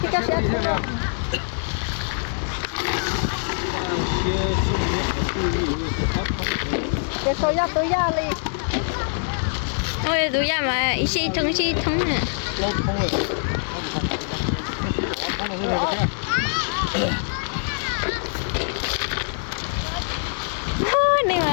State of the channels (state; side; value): silent; right; digital silence